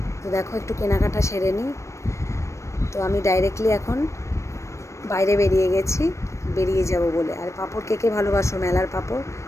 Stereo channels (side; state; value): right; late; 0.14 ms